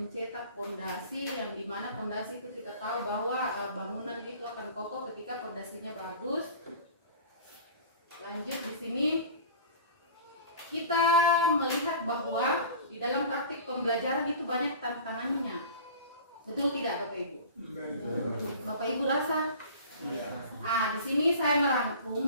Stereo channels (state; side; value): inverted; both; correlation -0.41